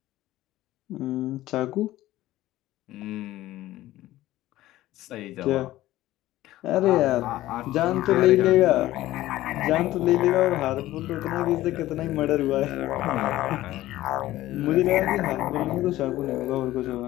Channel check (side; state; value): right; quieter; 15.6 dB